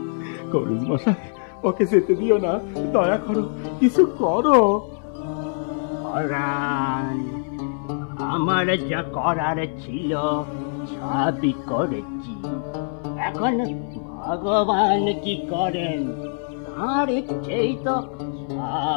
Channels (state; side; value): silent; right; 60 dB below the other